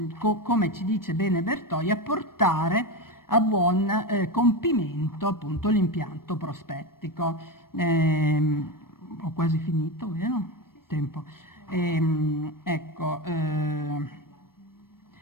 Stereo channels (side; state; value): right; late; 0.93 ms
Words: come ci dice bene Bertoia, portare a buon compimento appunto l'impianto prospettico. Ho quasi finito, vero? Tempo. Ecco,